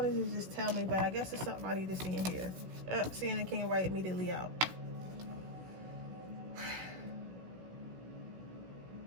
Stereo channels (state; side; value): late; left; 16 ms